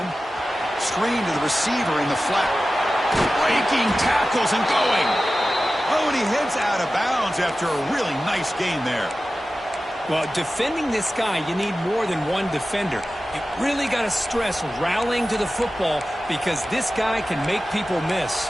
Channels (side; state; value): both; normal; correlation 0.95